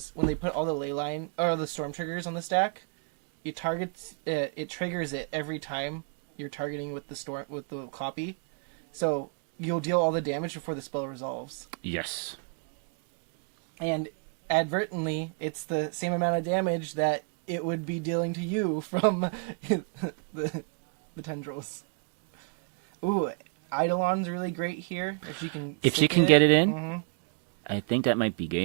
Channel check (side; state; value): left; quieter; 37.3 dB